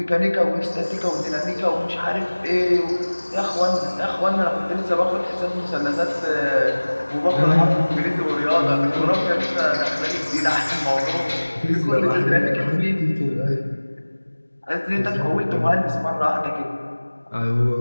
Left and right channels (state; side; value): inverted; both; correlation -1.00